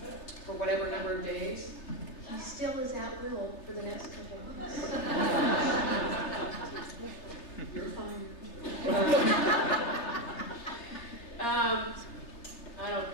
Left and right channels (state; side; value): late; right; 3.3 ms